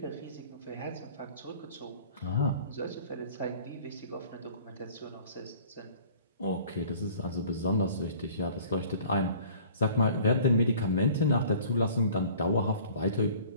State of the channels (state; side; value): inverted; both; correlation -0.50